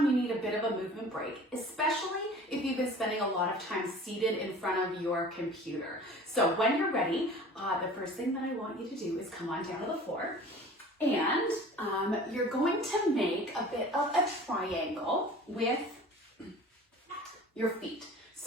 you need a bit of a movement break, especially if you've been spending a lot of time seated in front of your computer. So when you're ready, the first thing that I want you to do is come on down to the floor, and you're going to make a bit of a triangle with your feet.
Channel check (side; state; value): both; normal; correlation 0.44